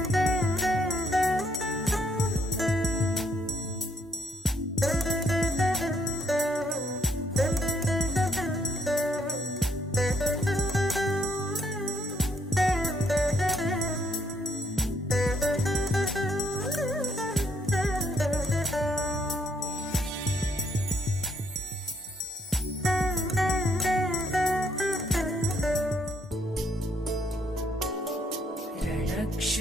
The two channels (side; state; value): both; normal; correlation 0.71